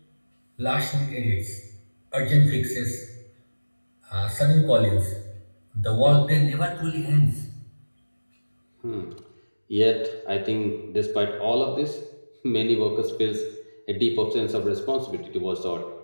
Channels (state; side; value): inverted; both; correlation -1.00